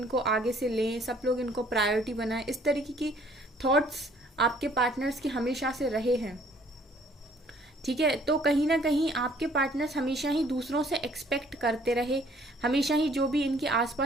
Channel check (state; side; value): normal; both; correlation 0.59